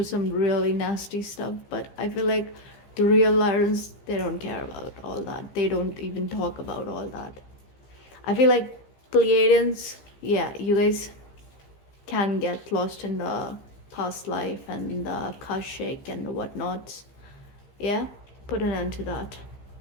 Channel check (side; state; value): right; late; 15 ms